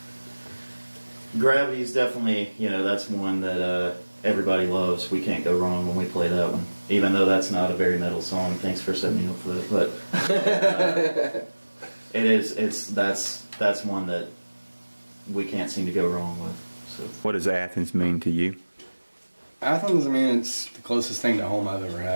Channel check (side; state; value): both; inverted; correlation -1.00